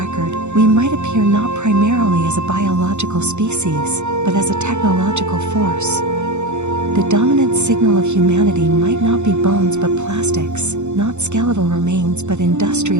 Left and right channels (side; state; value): left; late; 0.83 ms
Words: we might appear not primarily as a biological species, but as a technological force. The dominant signal of humanity might not be bones but plastics, not skeletal remains but